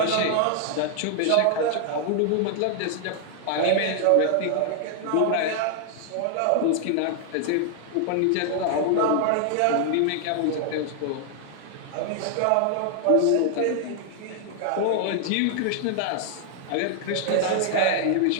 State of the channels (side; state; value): both; different; correlation 0.00